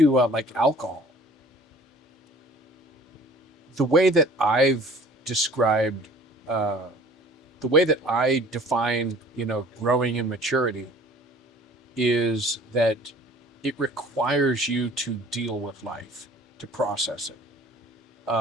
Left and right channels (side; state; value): both; normal; correlation 0.49